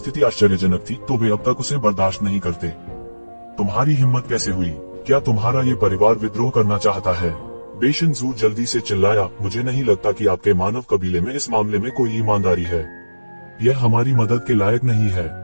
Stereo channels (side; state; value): both; inverted; correlation -1.00